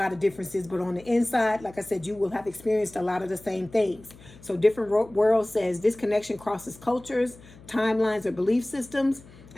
of differences, but on the inside, like I said, you will have experienced a lot of the same things. So different worlds says this connection crosses cultures, timelines, or belief systems,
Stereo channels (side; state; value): left; noise; hum, 22 dB below the sound